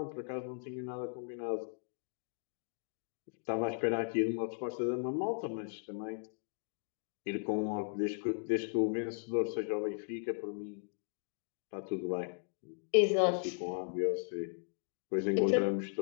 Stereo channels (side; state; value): right; silent; digital silence